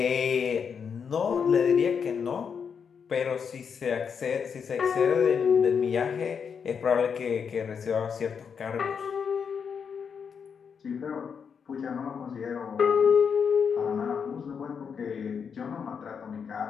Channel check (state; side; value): quieter; right; 6.6 dB